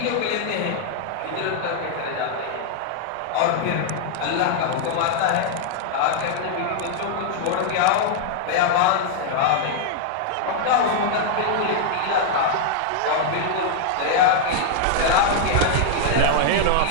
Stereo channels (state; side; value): different; both; correlation -0.01